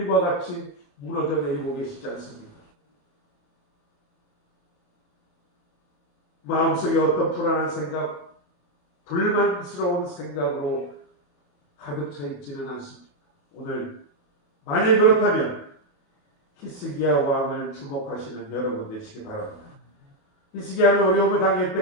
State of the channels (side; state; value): right; late; 28 ms